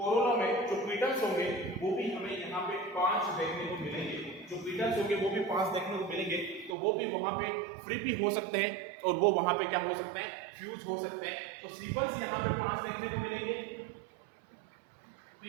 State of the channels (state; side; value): drops out; left; at 6.8 s